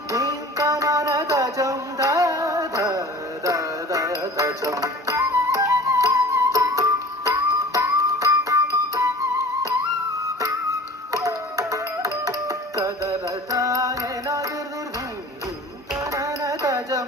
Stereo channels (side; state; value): both; normal; correlation 0.43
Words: தீந்தனன தஜம் தத தஜம் ததரதானி நதிர்திர்தி தீந்தனன